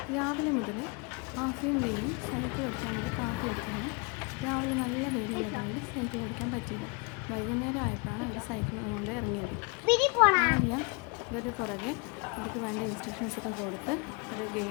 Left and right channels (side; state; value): right; quieter; 31.3 dB